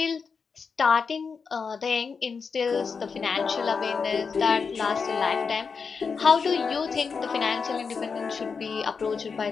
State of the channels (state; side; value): quieter; right; 5.4 dB